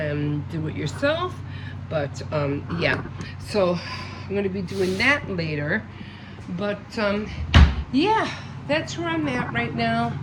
do it yourself. But yeah, so I'm going to be doing that later. But yeah, that's where I'm at right now.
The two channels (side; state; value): both; identical; correlation 1.00